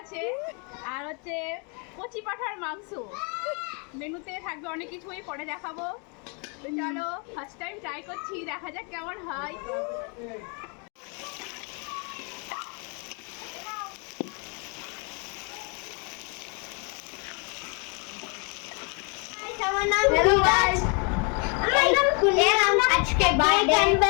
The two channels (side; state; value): right; quieter; 35.1 dB